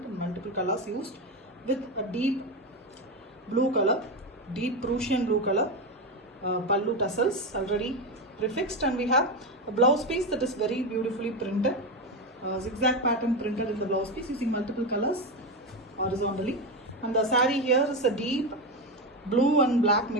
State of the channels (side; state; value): both; normal; correlation 0.14